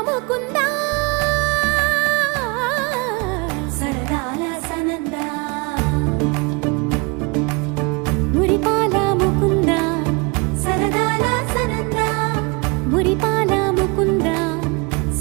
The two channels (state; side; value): quieter; left; 29.1 dB